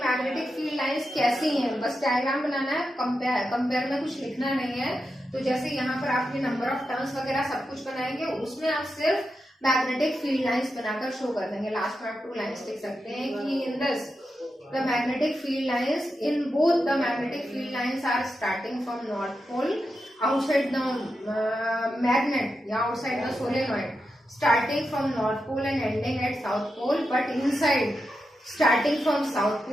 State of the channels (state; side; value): normal; both; correlation 0.88